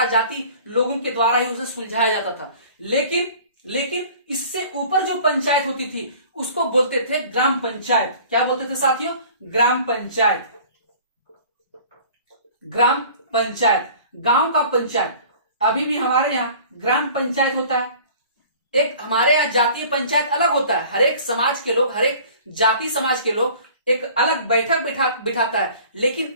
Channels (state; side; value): inverted; both; correlation -0.47